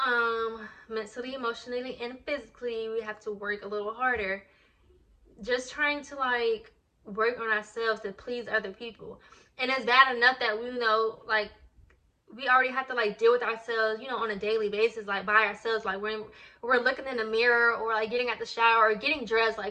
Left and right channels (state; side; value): identical; both; correlation 1.00